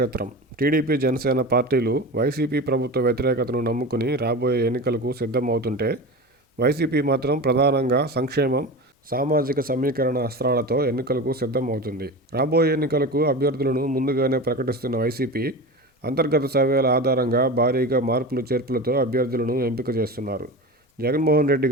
TDP, Janasena పార్టీలు YCP ప్రభుత్వ వ్యతిరేకతను నమ్ముకుని రాబోయే ఎన్నికలకు సిద్ధం అవుతుంటే, వైసీపీ మాత్రం ప్రధానంగా సంక్షేమం, సామాజిక సమీకరణ అస్త్రాలతో ఎన్నికలకు సిద్ధం అవుతుంది. రాబోయే ఎన్నికలకు అభ్యర్థులను ముందుగానే ప్రకటిస్తున్న వైసీపీ అంతర్గత సర్వేల ఆధారంగా భారీగా మార్పులు చేర్పులతో అభ్యర్థులను ఎంపిక చేస్తున్నారు. జగన్మోహన్ రెడ్డి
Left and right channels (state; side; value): normal; both; correlation 0.28